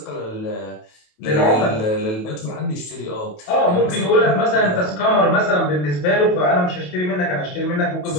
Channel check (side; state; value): right; late; 28 ms